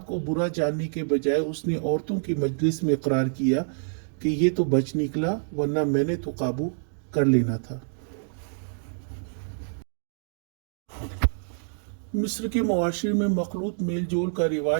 کو برا جاننے کے بجائے اس نے عورتوں کی مجلس میں اقرار کیا کہ یہ تو بچ نکلا، ورنہ میں نے تو قابو کر لینا تھا۔ مصر کے معاشرے میں مخلوط میل جول کا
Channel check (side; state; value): left; silent; digital silence